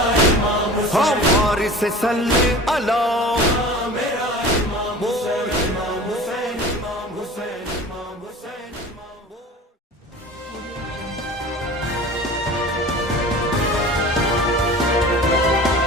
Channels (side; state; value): both; normal; correlation 0.39